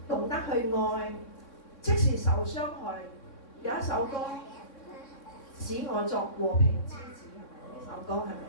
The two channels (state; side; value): late; right; 3.6 ms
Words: 懂得去愛，即使受傷害。有一首歌使我作和平之子，係咪？呢首歌係咪